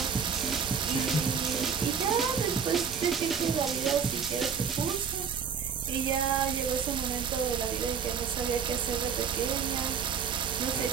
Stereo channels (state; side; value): quieter; left; 6.6 dB